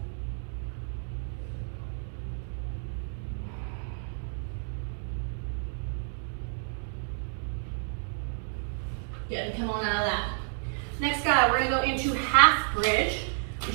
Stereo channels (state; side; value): silent; left; digital silence